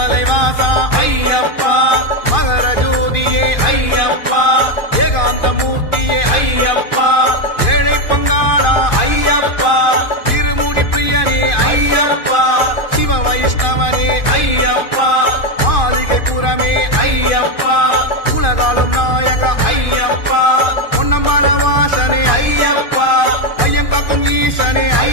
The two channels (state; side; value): late; right; 2.5 ms